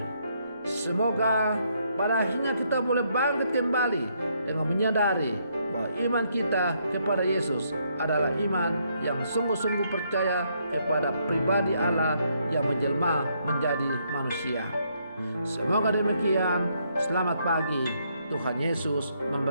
Semoga pada akhirnya kita boleh bangkit kembali dengan menyadari bahwa iman kita kepada Yesus adalah iman yang sungguh-sungguh percaya kepada pribadi Allah yang menjelma menjadi manusia. Semoga demikian. Selamat pagi. Tuhan Yesus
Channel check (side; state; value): both; inverted; correlation -0.73